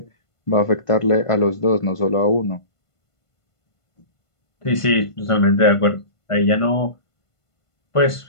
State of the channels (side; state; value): right; late; 1.5 ms